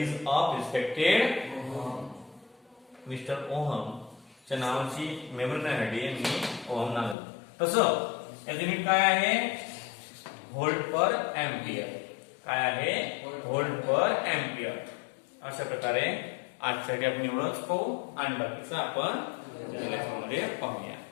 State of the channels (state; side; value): drops out; right; at 7.2 s